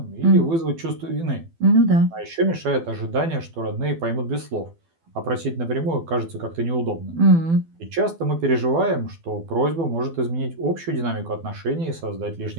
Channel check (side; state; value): left; late; 12 ms